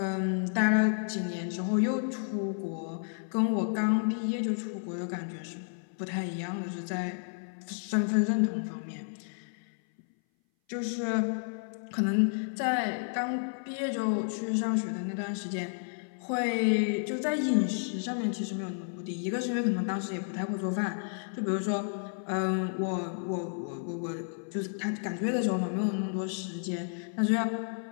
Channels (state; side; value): silent; right; 57 dB below the other